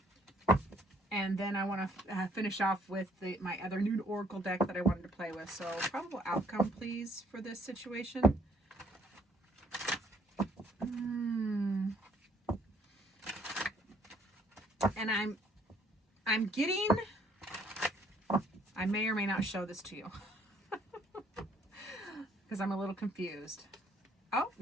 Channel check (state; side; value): normal; both; correlation 0.64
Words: And then I want to finish off with my other new Oracle deck that I wanted to play with. So probable outcome, please, for this situation. And I'm getting... I may or may not show this to you. Because I'm a little confused. Oh,